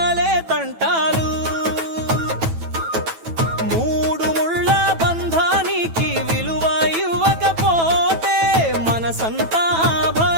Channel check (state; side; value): late; left; 9.1 ms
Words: తంటాలు. మూడు ముళ్ళ బంధానికి విలువ ఇవ్వకపోతే మనసంతా